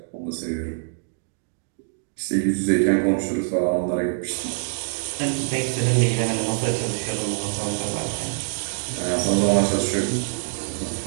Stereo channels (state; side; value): silent; left; digital silence